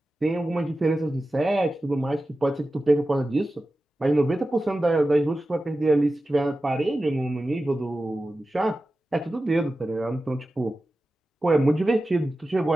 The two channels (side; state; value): both; normal; correlation 0.94